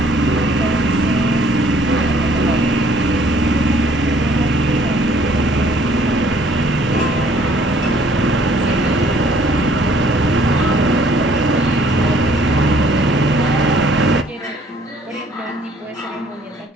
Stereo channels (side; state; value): both; normal; correlation 0.60